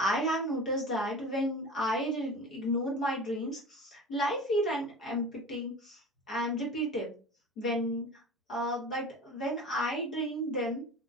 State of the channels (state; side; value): normal; both; correlation 0.35